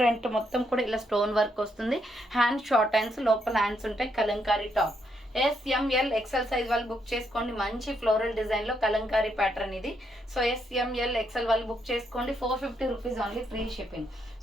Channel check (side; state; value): both; normal; correlation 0.77